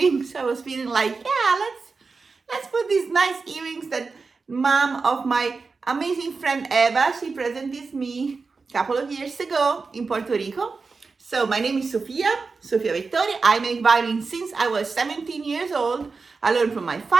I was feeling like, yeah, let's put these nice earrings that mom of my amazing friend Eva, she presented me a couple of years ago in Puerto Rico. So my name is Sofia Vettori. I make violin since I was 17 years old. I learned from my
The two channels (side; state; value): left; quieter; 4.4 dB